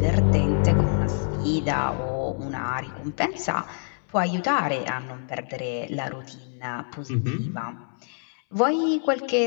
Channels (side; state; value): right; silent; 61 dB below the other